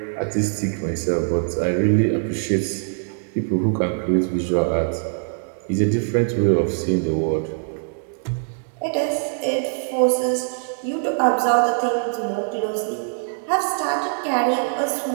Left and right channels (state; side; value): silent; left; digital silence